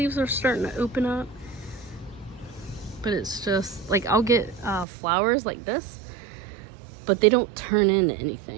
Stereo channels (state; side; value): drops out; left; at 4.9 s